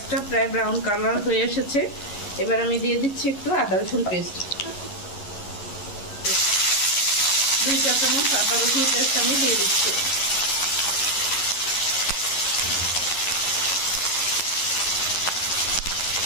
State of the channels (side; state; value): right; late; 11 ms